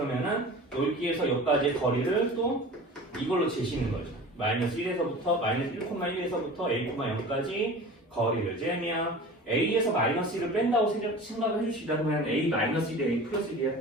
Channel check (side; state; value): both; normal; correlation 0.38